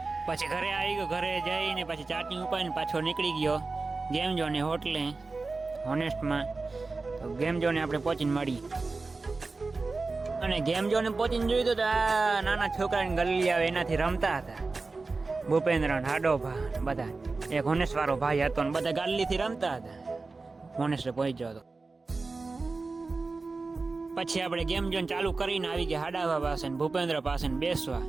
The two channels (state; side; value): quieter; left; 3.8 dB